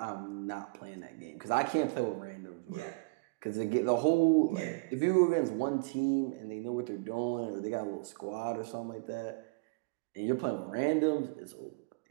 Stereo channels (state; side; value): quieter; left; 29.6 dB